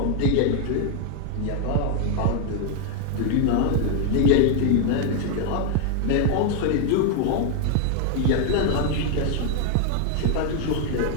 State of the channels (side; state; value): both; different; correlation 0.00